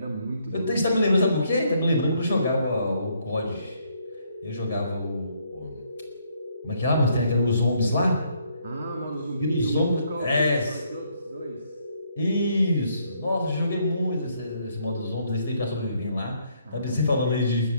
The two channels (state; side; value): inverted; both; correlation -0.70